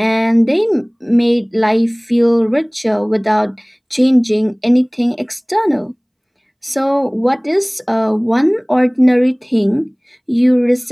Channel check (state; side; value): identical; both; correlation 1.00